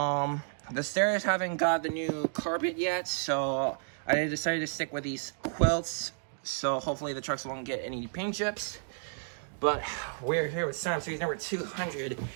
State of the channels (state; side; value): silent; left; digital silence